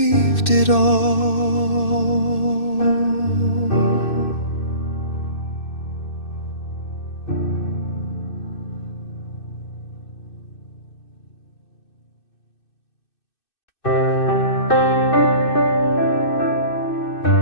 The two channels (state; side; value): late; right; 2.6 ms